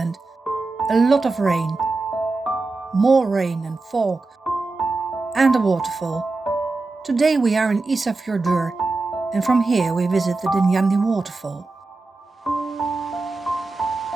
a lot of rain, more rain and fog, and a waterfall. Today we are in Isafjördur, and from here we visit the Dynjandi waterfall.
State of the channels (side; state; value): left; quieter; 3.5 dB